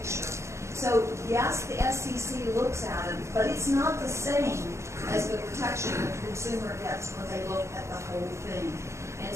So, yes, the SEC looks at it, but it's not the same as the protection the consumer gets when they look at the whole thing. And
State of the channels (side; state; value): left; late; 0.14 ms